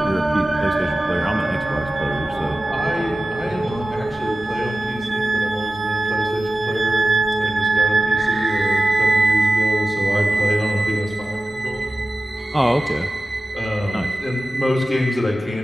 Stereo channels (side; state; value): both; normal; correlation 0.95